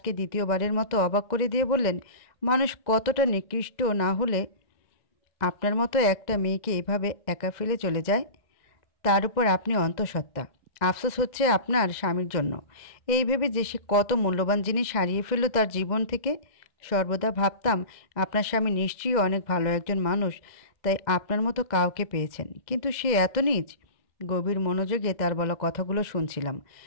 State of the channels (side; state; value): right; late; 2.0 ms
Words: দ্বিতীয়বারের মতো অবাক করে দিয়ে বললেন, মানুষ কতটা নিকৃষ্ট না হলে আপনার মতো একটা মেয়েকে এভাবে একা ফেলে চলে যায়? তার উপর আপনি অন্তঃসত্ত্বা। আফসোস হচ্ছে আপনার স্বামীর জন্য। এই ভেবে যে সে কত মূল্যবান জিনিস হারিয়ে ফেলল তার জীবন থেকে। সর্বদা ভাবতাম আপনার স্বামী নিশ্চয়ই অনেক ভালো একজন মানুষ, তাই আপনার মতো কাউকে পেয়েছেন। কিন্তু সে এত নীচ। গভীর মনোযোগে তার বলা কথাগুলো শুনছিলাম।